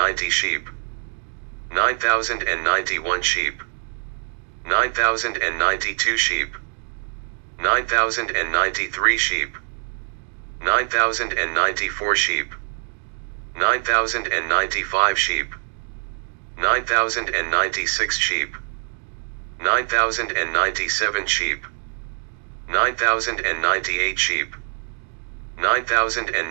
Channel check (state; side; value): silent; left; digital silence